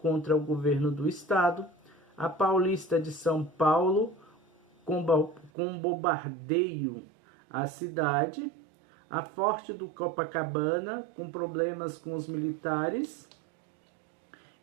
o governo do estado, a Paulista de São Paulo, com bombardeio à cidade, a Forte do Copacabana, com problemas com os militares,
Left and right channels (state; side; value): drops out; left; at 5.5 s